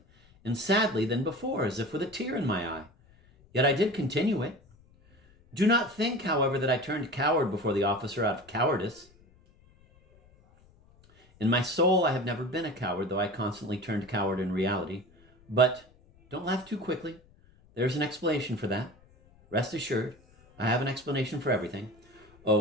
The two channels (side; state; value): left; noise; rumble, 28 dB below the sound